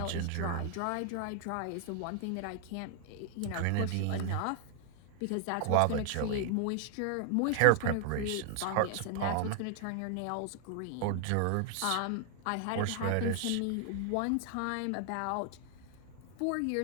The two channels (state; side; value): different; both; correlation 0.00